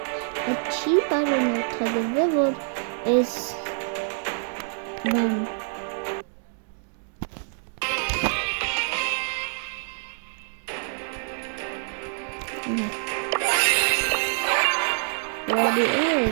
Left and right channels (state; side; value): silent; left; digital silence